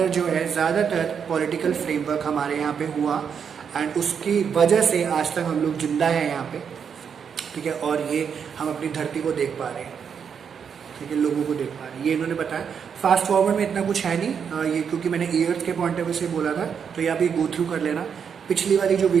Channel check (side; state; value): left; quieter; 7.1 dB